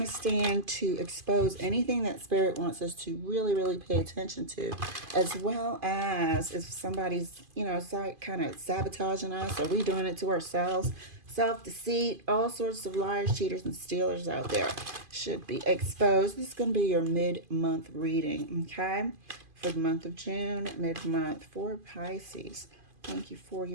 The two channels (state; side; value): late; left; 2.5 ms